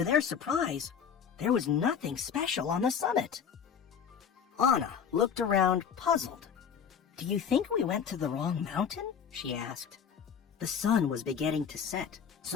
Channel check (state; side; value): quieter; right; 7.3 dB